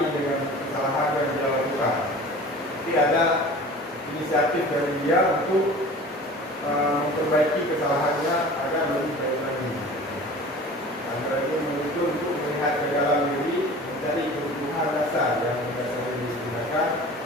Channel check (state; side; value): normal; both; correlation 0.41